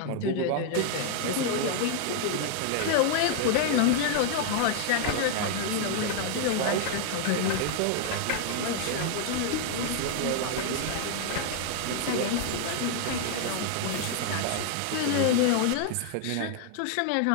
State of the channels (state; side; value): different; both; correlation 0.00